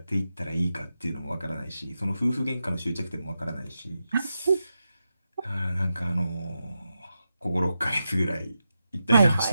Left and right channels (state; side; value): inverted; both; correlation -0.89